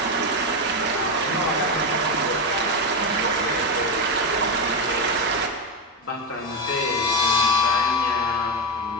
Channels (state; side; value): normal; both; correlation 0.11